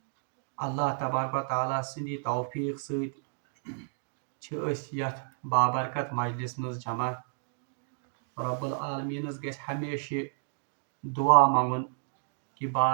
اللہ تبارک و تعالیٰ سندی توفیق ست یتھ بابرکت مجلس مز جمع. رب العالمینس گژھِ ہمیشہ دعا منگُن کہ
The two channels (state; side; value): silent; left; digital silence